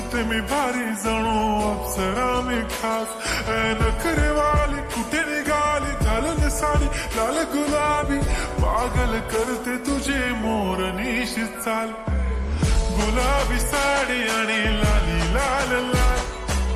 मी भारी जणू अप्सरा मी खास. नखरेवाली कुठे निघाली घालून साडी लाल गुलाबी, पागल करते तुझे मोरनीशी चाल. गुलाबी साडी आणि लाली लाल लाल,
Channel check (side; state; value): both; identical; correlation 1.00